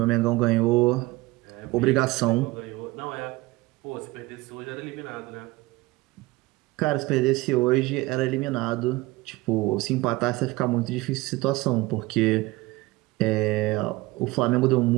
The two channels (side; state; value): left; quieter; 20.3 dB